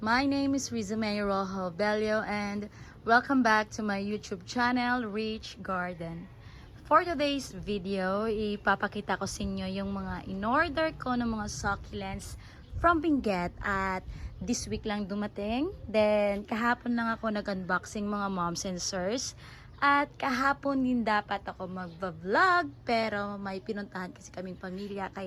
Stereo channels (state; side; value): identical; both; correlation 1.00